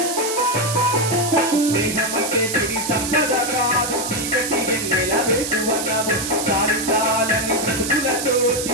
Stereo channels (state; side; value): noise; right; hiss, 4 dB below the sound